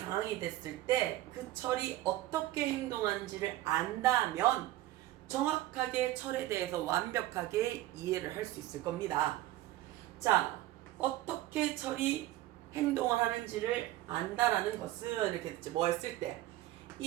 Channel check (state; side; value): quieter; left; 15.7 dB